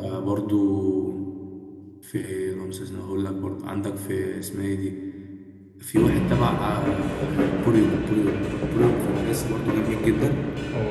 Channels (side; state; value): both; identical; correlation 1.00